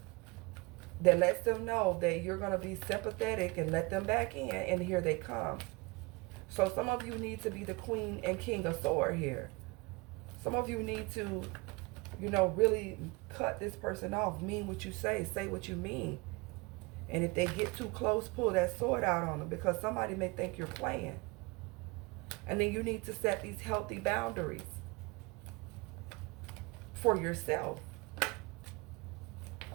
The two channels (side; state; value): left; quieter; 25.6 dB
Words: that lets them know that you're going to be sympathetic and let them back in, and here they come. So some of you need to be the queen and king of sword here. Some of you need to, you know, really cut this person off. Mean what you say what you mean. And if they get too close, pull that sword out on them, because somebody may think you're playing. And then you need to set these healthy boundaries for yourself.